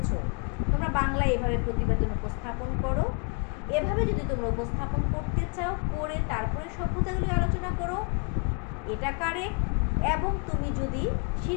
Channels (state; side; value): quieter; right; 35.8 dB